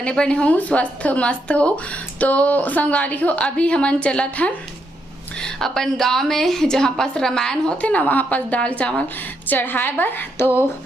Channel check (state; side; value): normal; both; correlation 0.78